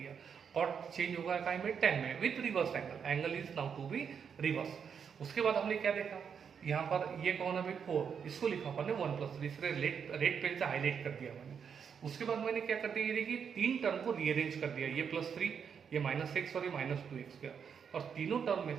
कॉट चेंज होगा काय में, tan में with reverse angle, angle is now to be reverse. उसके बाद हमने क्या देखा, यहाँ पर ये कौन है भाई 4, इसको लिखा अपन ने 1 + 3, इसलिए रेड पेन से हाईलाइट कर दिया मैंने। उसके बाद मैंने क्या कर दिया, ये देखिए 3 टर्म को रीअरेंज कर दिया, ये +3, ये -x और ये -2x स्क्वायर, और तीनों टर्म में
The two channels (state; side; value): quieter; left; 7.0 dB